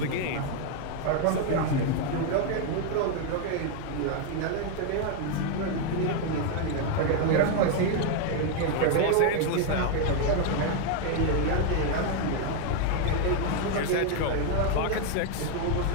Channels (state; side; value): different; both; correlation 0.01